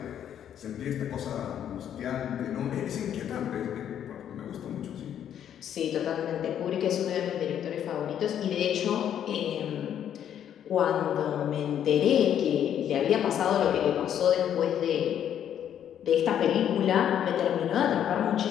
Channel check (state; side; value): quieter; right; 9.8 dB